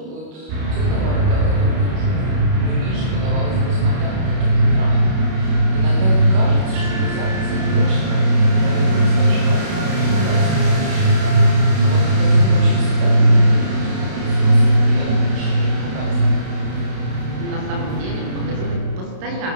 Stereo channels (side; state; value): left; late; 32 ms